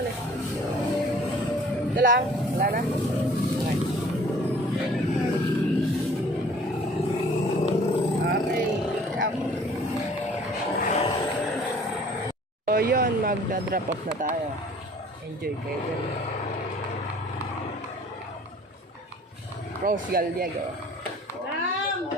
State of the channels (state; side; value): normal; both; correlation 0.52